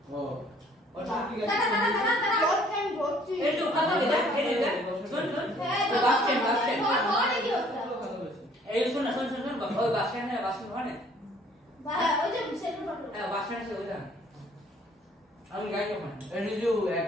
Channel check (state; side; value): normal; both; correlation 0.59